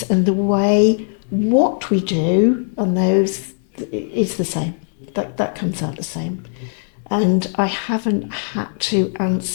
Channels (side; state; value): right; silent; digital silence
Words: and the way what we do on those is the same. That comes out the same. And I haven't had to